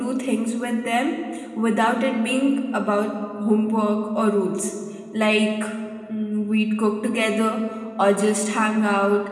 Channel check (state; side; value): identical; both; correlation 1.00